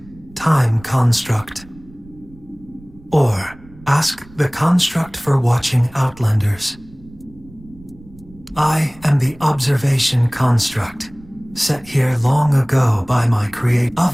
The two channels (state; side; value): noise; right; rumble, 23 dB below the sound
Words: Time Construct. Or ask the construct for watching Outlanders. I am the observation construct, set here long ago by my creator.